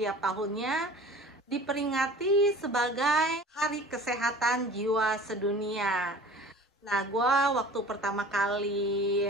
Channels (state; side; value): normal; both; correlation 0.43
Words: tahunnya diperingati sebagai Hari Kesehatan Jiwa Sedunia. Nah, gue waktu pertama kali